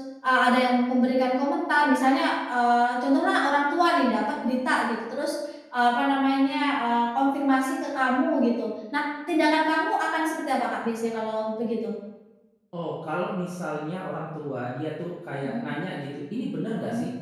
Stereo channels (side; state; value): both; identical; correlation 1.00